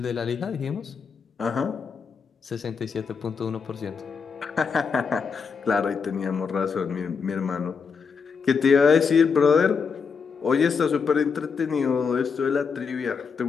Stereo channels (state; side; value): quieter; right; 5.7 dB